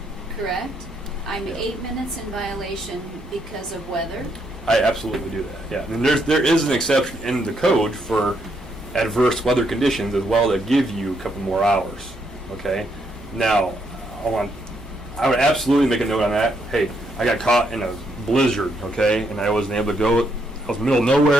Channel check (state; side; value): normal; both; correlation 0.76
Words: correct? I'm 8 minutes in violation because of weather. I absolutely do that. Yeah, and there is an exception in the code for adverse weather conditions as well that give you a couple more hours. Okay. Now, I would absolutely make a note on that. Hey, I got caught in a blizzard, okay, and I wasn't able to go. I was in the middle of